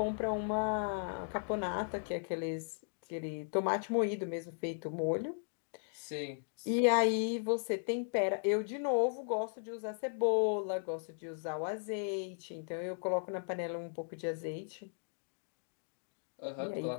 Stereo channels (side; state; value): right; silent; digital silence